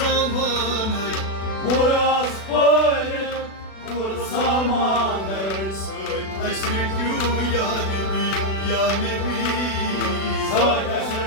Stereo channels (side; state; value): right; late; 36 ms